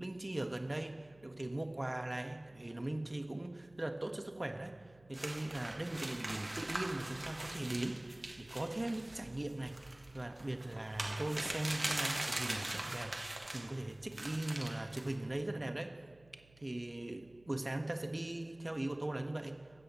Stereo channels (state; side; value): noise; right; hum, 26 dB below the sound